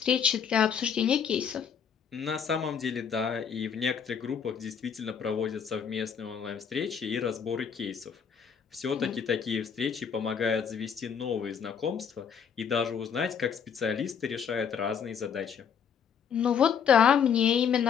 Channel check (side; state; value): right; quieter; 7.3 dB